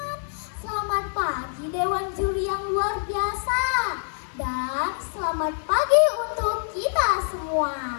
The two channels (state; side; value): silent; right; digital silence